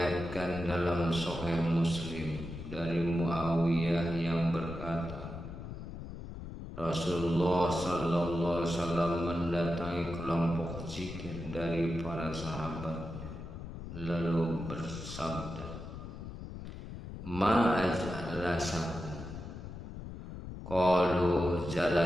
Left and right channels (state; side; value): noise; left; rumble, 10 dB below the sound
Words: dalam Sahih Muslim dari Muawiyah yang berkata, Rasulullah sallallahu alaihi wasallam mendatangi kelompok zikir dari para sahabat lalu bersabda, Ma ajlasakum? Qalu